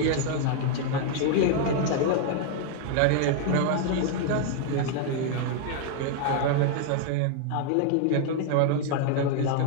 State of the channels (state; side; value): different; both; correlation 0.00